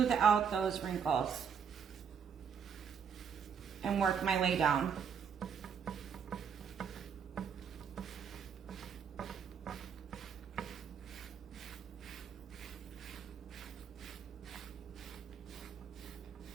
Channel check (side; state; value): left; quieter; 7.1 dB